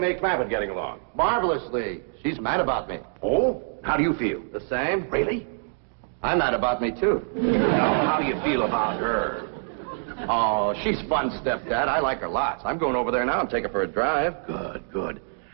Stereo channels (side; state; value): left; silent; digital silence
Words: Clampett getting along? Marvelously. She's mad about me. Oh? How do you feel? The same? Really? I'm mad about me, too. Now, how do you feel about her? Oh, she's fun, Stepdad. I like her lots. I'm going over there now and take her for a drive. Good, good.